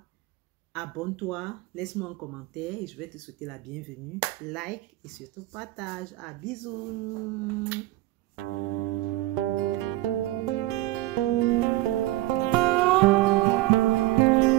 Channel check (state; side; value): quieter; left; 17.8 dB